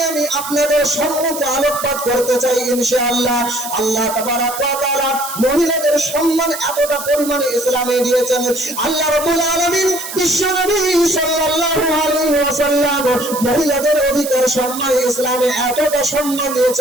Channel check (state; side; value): noise; right; hiss, 9 dB below the sound